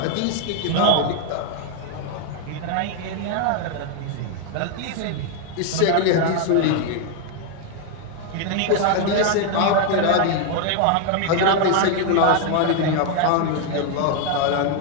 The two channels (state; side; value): different; both; correlation 0.01